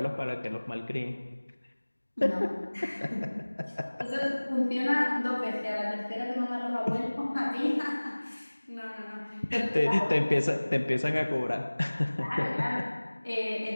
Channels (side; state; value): both; inverted; correlation -1.00